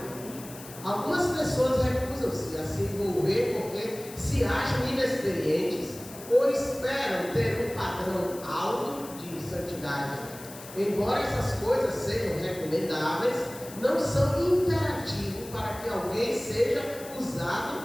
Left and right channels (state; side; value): noise; left; hiss, 16 dB below the sound